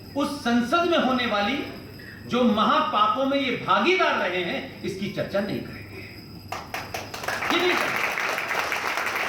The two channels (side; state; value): both; identical; correlation 1.00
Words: उस संसद में होने वाली जो महापापों में ये भागीदार रहे हैं इसकी चर्चा नहीं करेंगे। ये नहीं करेंगे